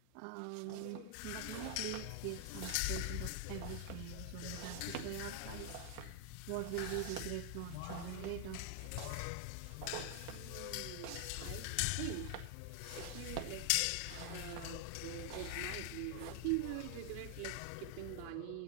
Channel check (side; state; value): both; different; correlation 0.00